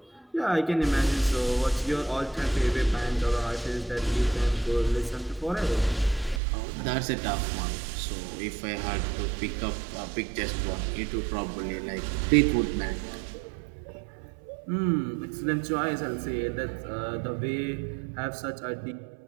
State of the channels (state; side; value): drops out; left; at 6.4 s